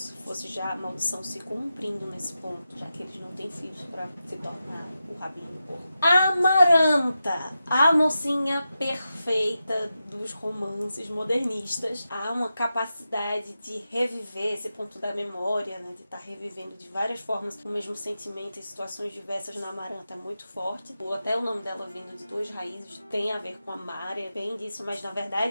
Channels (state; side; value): inverted; both; correlation -0.90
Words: fosse já a maldição se cumprindo nesse ponto, já que eles não têm filhos para se tornar o rabino porco. Amaranta, a mocinha perfeita dos romances modernistas. Há uma capacidade de reviver esse ponto da memória, né, de estar revivendo de várias formas o mesmo sentimento em situações diversas na Amaranta é muito forte. Até o nome dela vindo de duas raízes tem a ver com amar, é bem disso, mas na